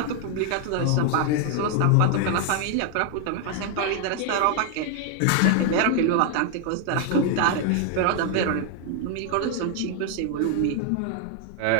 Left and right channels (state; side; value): different; both; correlation 0.00